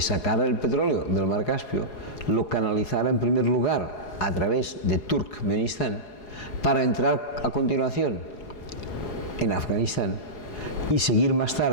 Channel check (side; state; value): right; late; 4.8 ms